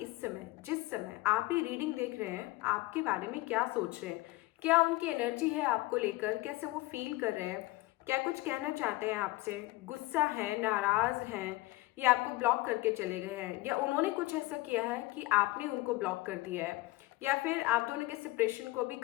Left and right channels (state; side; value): quieter; right; 19.9 dB